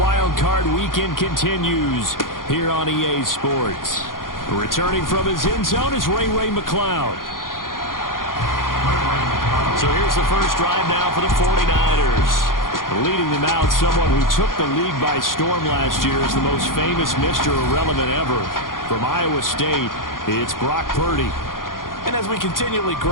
Card Weekend continues here on EA Sports. Returning from his end zone is Ray McCloud. So here's the first drive now for the 49ers. Leading them out, someone who took the league by storm last year is the most famous Mr. Irrelevant ever. From Iowa State, it's Brock Purdy. And as we continually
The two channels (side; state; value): right; late; 0.90 ms